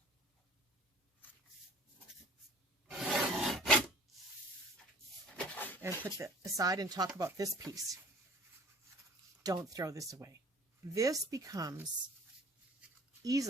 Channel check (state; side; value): normal; both; correlation 0.50